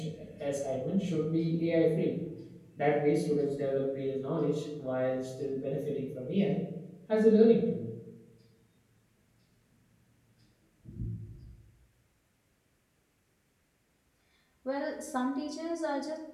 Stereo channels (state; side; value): identical; both; correlation 1.00